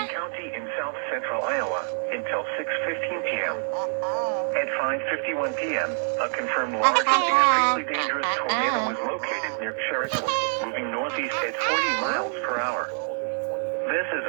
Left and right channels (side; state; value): left; silent; digital silence